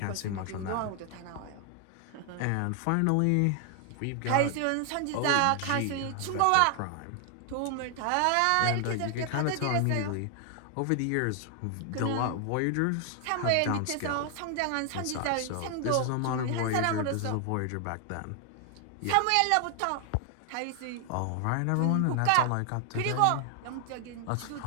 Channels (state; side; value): different; both; correlation 0.00